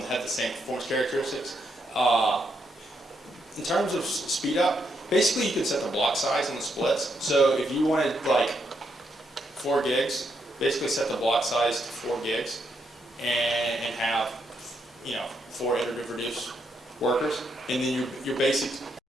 have the same performance characteristics. In terms of speed up, basically you can set the block size on the splits. So if you wanted like 4 gigs, basically set the block size to 4 gigs and have, 4 iterative reduce workers. And then your basic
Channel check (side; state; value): both; normal; correlation 0.78